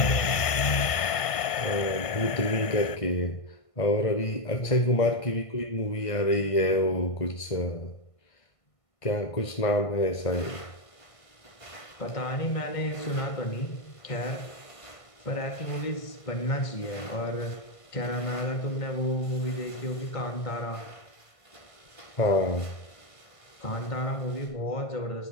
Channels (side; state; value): right; late; 1.5 ms